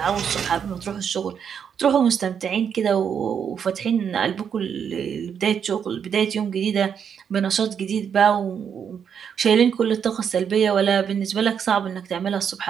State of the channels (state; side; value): quieter; left; 7.6 dB